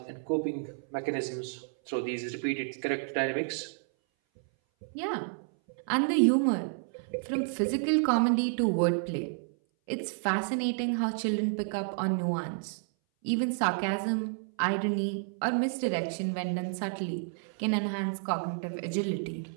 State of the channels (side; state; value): left; silent; 57 dB below the other